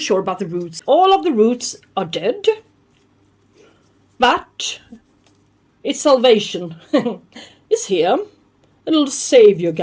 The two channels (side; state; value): both; identical; correlation 1.00